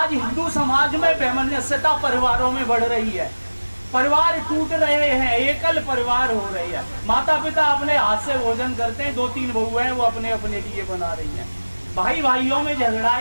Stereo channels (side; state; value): both; inverted; correlation -1.00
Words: हिंदू समाज में बेमनुष्यता परिवारों में बढ़ रही है। परिवार टूट रहे हैं, एकल परिवार हो रही है। माता पिता अपने हाथ से भोजन करते हैं, 2-3 बहुएं हैं वो अपने अपने लिए बना रही हैं। भाई भाइयों में झगड़ा,